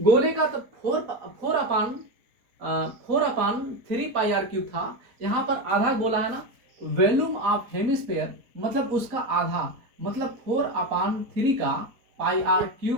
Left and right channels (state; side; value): late; left; 4.1 ms